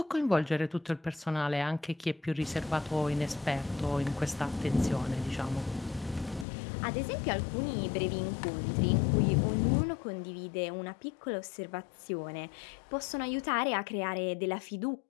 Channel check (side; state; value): right; drops out; at 6.5 s